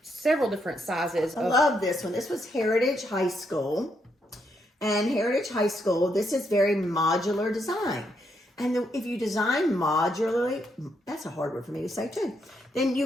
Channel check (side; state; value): both; normal; correlation 0.77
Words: several different sizes. I love this one. This was Heritage High School. And Heritage High School, this is very modular design. And if you design modularly, that's a hard word for me to say too, then you